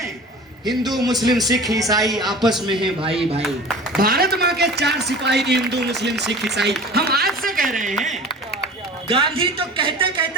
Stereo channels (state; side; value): normal; both; correlation 0.39